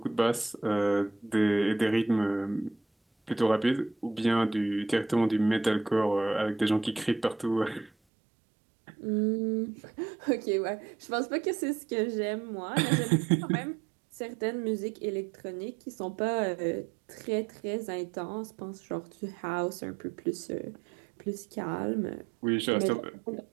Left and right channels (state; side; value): drops out; left; at 7.9 s